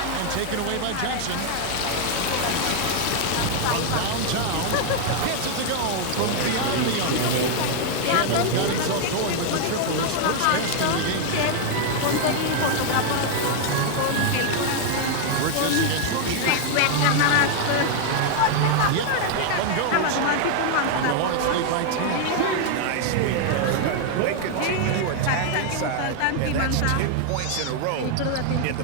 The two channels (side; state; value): both; different; correlation 0.00